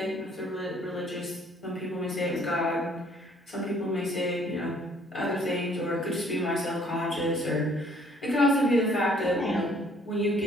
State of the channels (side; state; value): both; normal; correlation 0.61